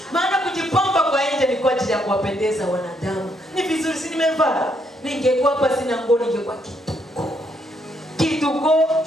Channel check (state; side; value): normal; both; correlation 0.74